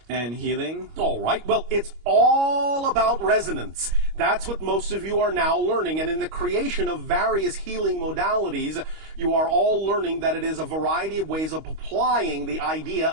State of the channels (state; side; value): late; left; 25 ms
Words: and healing. All right. Well, it's all about resonance. That's what most of you are now learning. And in the creation of various healing modalities, you are all learning that it is a variety of ways of applying the idea